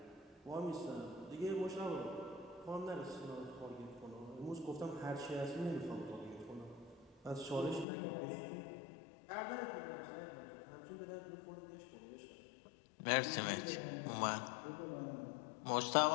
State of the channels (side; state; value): right; drops out; at 7.9 s